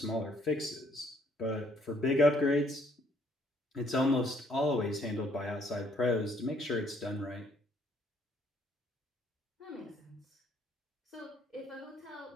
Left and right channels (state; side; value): normal; both; correlation 0.66